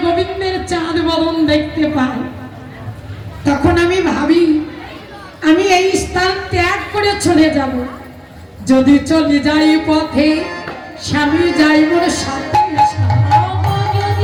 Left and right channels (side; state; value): both; identical; correlation 1.00